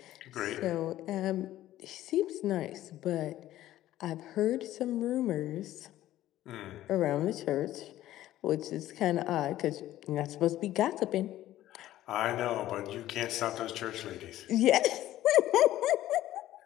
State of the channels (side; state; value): right; quieter; 14.0 dB